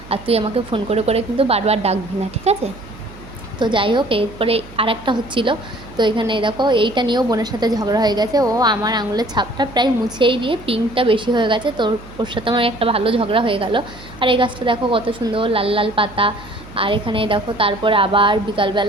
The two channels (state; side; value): noise; right; hum, 19 dB below the sound